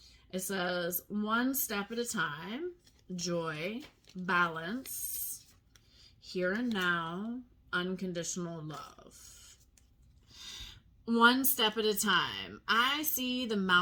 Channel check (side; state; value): both; identical; correlation 1.00